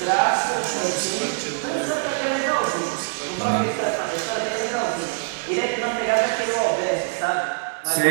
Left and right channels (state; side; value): silent; left; 60 dB below the other